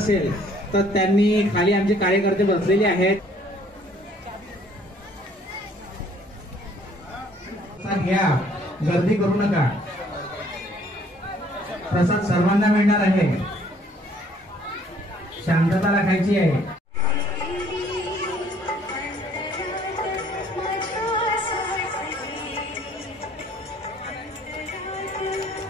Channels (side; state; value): both; normal; correlation 0.60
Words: तर त्यांनी खाली आमचे कार्यकर्ते बसलेले आहेत। घ्या, गर्दी करू नका। प्रसाद सर्वांना मिळणार आहे, शांतता राखायची आहे।